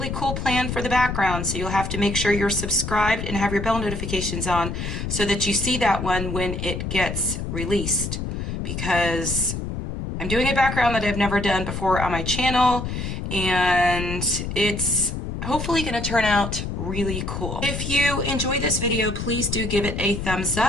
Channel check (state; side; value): noise; left; rumble, 4 dB below the sound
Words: cool plan for the background, so you'll have to make sure you're subscribed and have your bell notifications on so that you see that one when it gets released, because I'm doing a background that I've never done before on my channel, and it's hopefully going to turn out really cool. If you enjoy this video, please do give it a thumbs